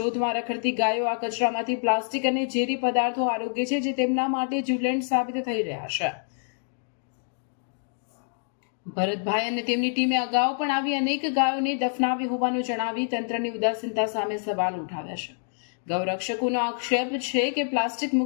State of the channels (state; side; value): silent; right; digital silence